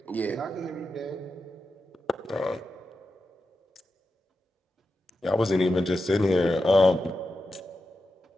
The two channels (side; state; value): both; normal; correlation 0.90